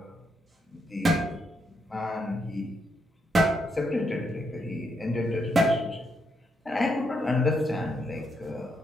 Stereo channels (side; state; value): both; normal; correlation 0.78